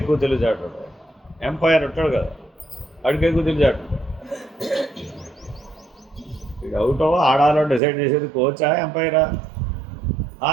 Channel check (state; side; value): drops out; left; at 7.8 s